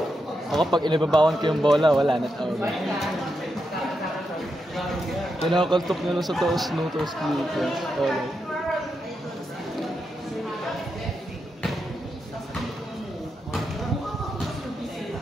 Ako pag inibabawan ko yung bola, wala na tawag. Kinakakaltok niya lang sa toes no, toes dito. Alright.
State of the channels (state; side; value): normal; both; correlation 0.85